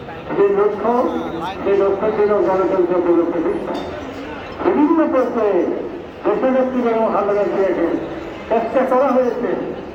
যে লক্ষ্য ছিল গণতন্ত্র পুনঃপ্রতিষ্ঠা। বিভিন্ন পর্যায়ে দেশনেত্রী বেগম খালেদা জিয়াকে চেষ্টা করা হয়েছে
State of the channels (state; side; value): identical; both; correlation 1.00